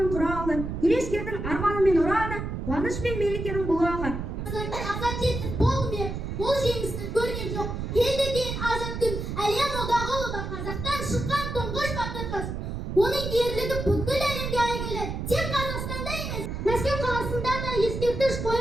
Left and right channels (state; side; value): noise; right; rumble, 5 dB below the sound